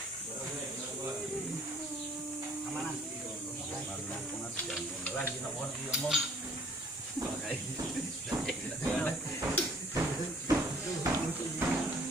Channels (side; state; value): both; normal; correlation 0.57